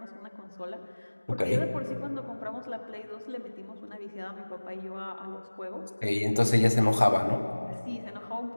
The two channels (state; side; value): inverted; both; correlation -1.00